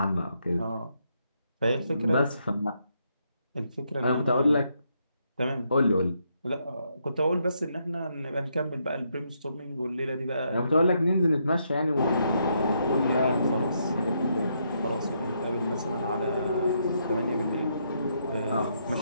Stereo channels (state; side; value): inverted; both; correlation -0.77